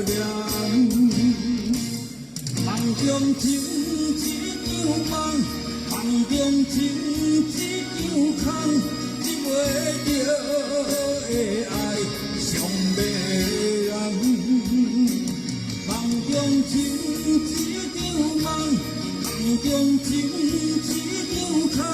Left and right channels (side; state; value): both; identical; correlation 1.00